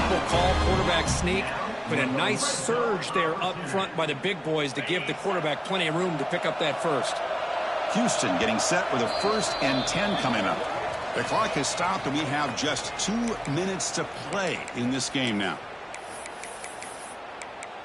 call, quarterback sneak, but a nice surge there up front by the big boys to give the quarterback plenty of room to pick up that first. Houston getting set with a 1st and 10 coming up. The clock has stopped, and we have just 2 minutes to play in this game now.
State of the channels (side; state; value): both; identical; correlation 1.00